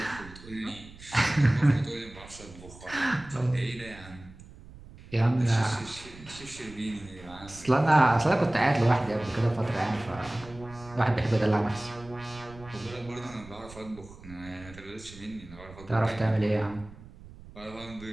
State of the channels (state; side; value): noise; right; rumble, 18 dB below the sound